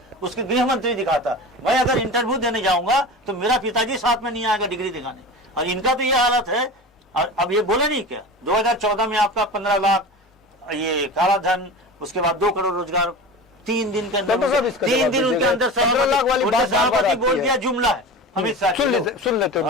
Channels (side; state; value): both; normal; correlation 0.32